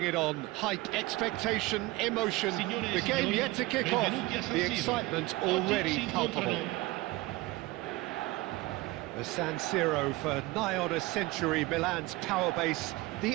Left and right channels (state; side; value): quieter; left; 20.5 dB